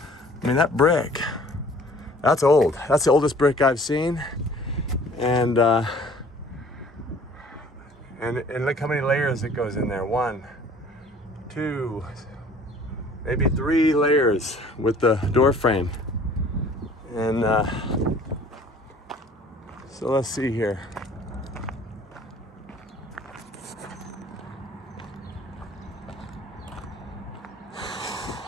I mean, that brick, that's old. That's the oldest brick I've seen. And look how many layers it goes in there. 1, 2, maybe 3 layers with the door frame. And so let's see here.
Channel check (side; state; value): both; normal; correlation 0.52